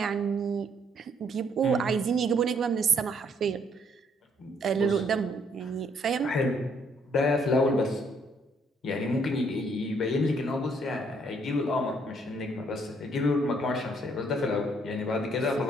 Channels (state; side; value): normal; both; correlation 0.67